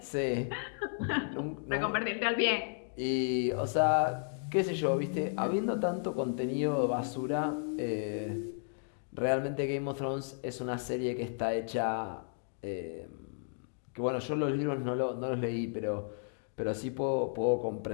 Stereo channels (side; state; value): right; silent; digital silence